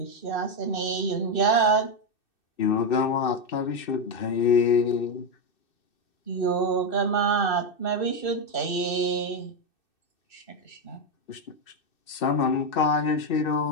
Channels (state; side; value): late; right; 2.6 ms